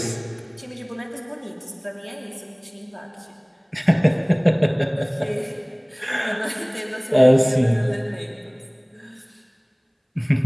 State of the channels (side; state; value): both; identical; correlation 1.00